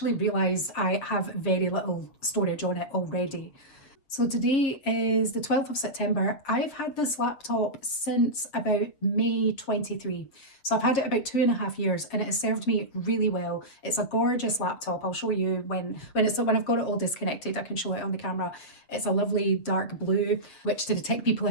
realised I have very little storage on it already. So today is the 12th of September. I've had this laptop since about May 23. So I've had it about 2.5 years and it has served me really well. It's a gorgeous laptop. I'll show you when I've got it all disconnected, I can show it on the camera. It's a lovely dark blue, which to the tech people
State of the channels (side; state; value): right; late; 7.4 ms